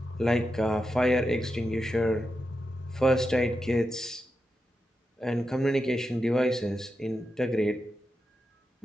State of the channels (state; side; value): normal; both; correlation 0.88